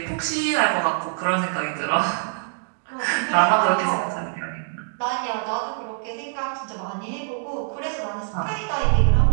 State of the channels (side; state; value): left; silent; digital silence